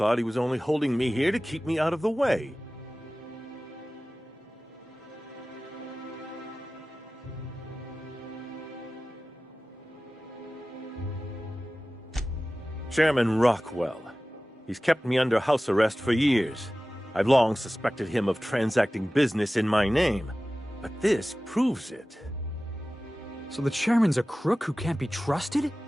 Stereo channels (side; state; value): both; normal; correlation 0.96